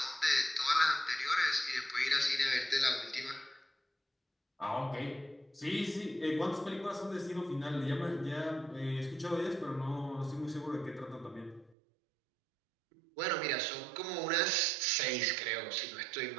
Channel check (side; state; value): left; drops out; at 11.8 s